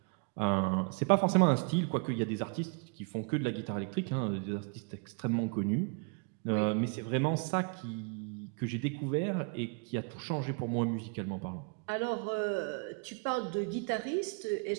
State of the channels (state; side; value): quieter; left; 36.2 dB